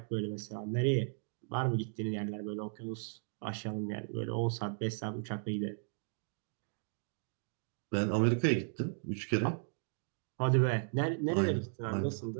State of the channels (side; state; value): left; silent; digital silence